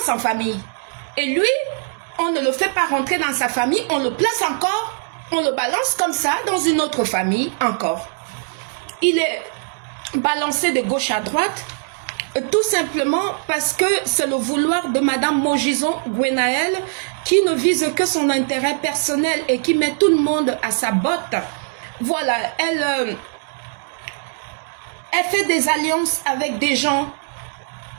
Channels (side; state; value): left; silent; digital silence